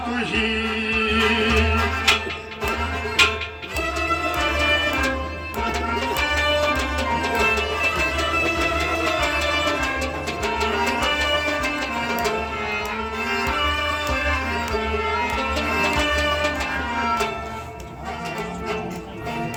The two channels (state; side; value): identical; both; correlation 1.00